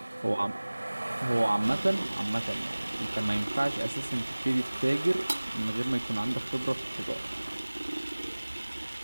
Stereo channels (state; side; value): inverted; both; correlation -1.00